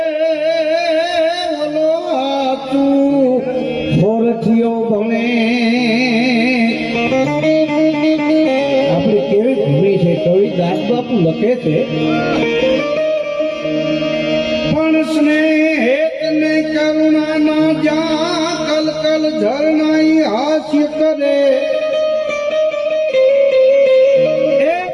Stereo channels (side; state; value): both; identical; correlation 1.00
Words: ઓલો તું હોરથિયો ભણે. આપણી કેવી ભૂમિ છે, કવિ દાસબાપુ લખે છે, પણ સ્નેહ ને કરુણા ના જા કલ કલ ઝરણાઈ હાસ્ય કરે. એ